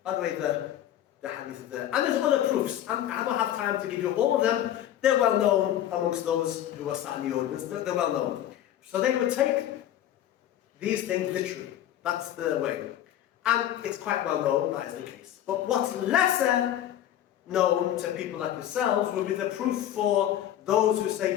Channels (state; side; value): quieter; right; 11.8 dB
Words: By the way, the hadith is there. And there's other proofs. I don't have time to give you all of them. They're well known amongst those who are sat in the audience. They're well known. So they would take these things literally. That's the way. And it's quite well known that is the case. But what's lesser known to people like yourselves will be the proof for those who say